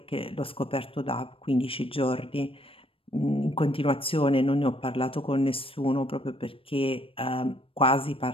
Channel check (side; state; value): right; late; 0.26 ms